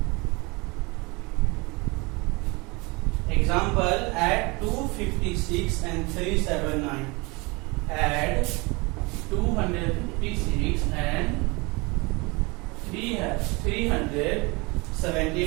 Example, add 256 and 379. Add 256 and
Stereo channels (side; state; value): left; quieter; 26.6 dB